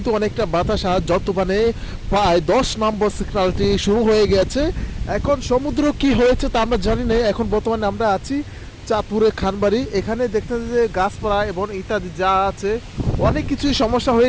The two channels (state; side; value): identical; both; correlation 1.00